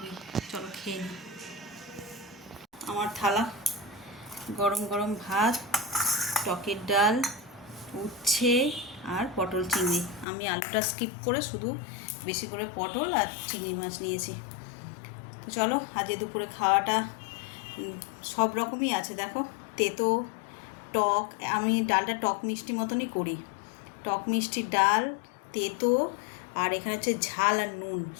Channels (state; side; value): drops out; right; at 10.2 s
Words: চলো খেয়ে নিই। আমার থালা, গরম গরম ভাত, টকের ডাল, উচ্ছে আর পটল চিংড়ি। আমি আলুটা স্কিপ করে শুধু বেশি করে পটল আর চিংড়ি মাছ নিয়েছি। তো চলো, আজকে দুপুরে খাওয়াটা সব রকমই আছে। দেখো, তেতো টক, আমি ডালটা টক মিষ্টি মতনই করি। টক মিষ্টি ডাল, তেতো, আর এখানে হচ্ছে ঝাল আর নুন,